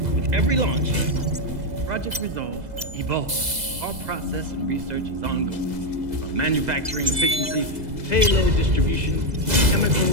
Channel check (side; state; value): left; late; 2.0 ms